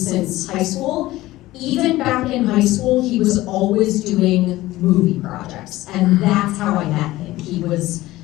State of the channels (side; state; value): right; quieter; 17.2 dB